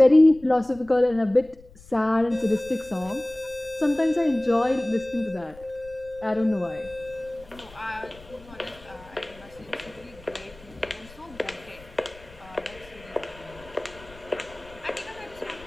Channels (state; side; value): noise; left; rumble, 22 dB below the sound